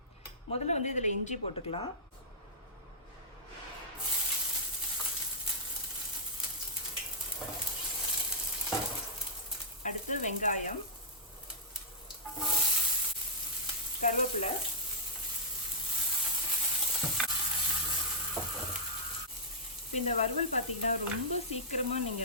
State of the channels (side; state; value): both; normal; correlation -0.12